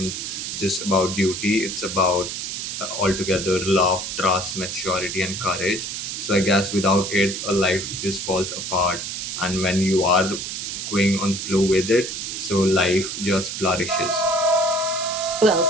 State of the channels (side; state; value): right; noise; hiss, 5 dB below the sound